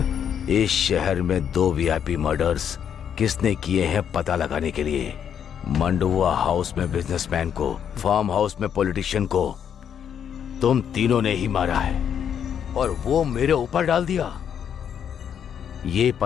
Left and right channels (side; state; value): right; quieter; 8.5 dB